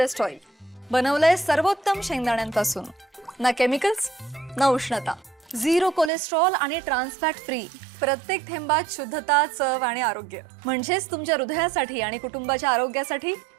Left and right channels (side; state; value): left; drops out; at 6.1 s